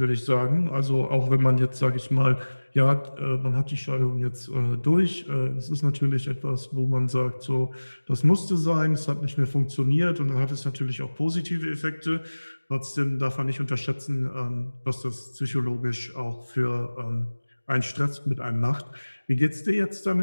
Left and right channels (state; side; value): inverted; both; correlation -1.00